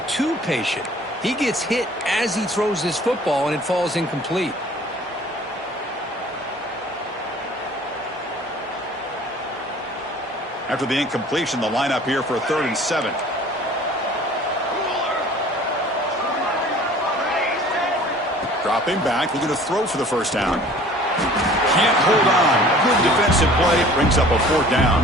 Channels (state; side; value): normal; both; correlation 0.49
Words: too patient. He gets hit as he throws this football, and it falls incomplete. After the incompletion, the lineup here for a 3rd and 7. Dropping back, looking to throw for the first down. Can't hold on. Good defensive play. Brings up a 4th down.